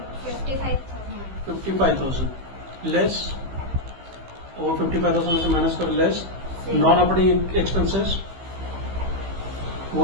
55,000 लेस, और 55,000 में से माइनस कर लेस नॉन ऑपरेटिंग एक्सपेंसेस,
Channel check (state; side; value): late; left; 15 ms